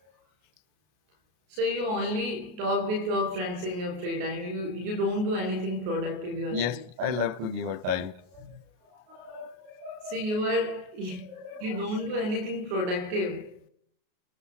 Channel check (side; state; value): left; late; 33 ms